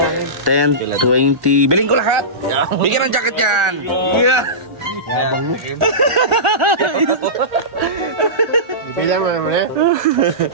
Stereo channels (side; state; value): left; late; 1.4 ms